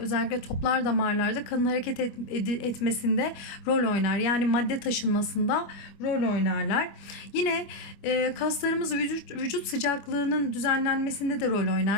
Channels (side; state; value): right; late; 25 ms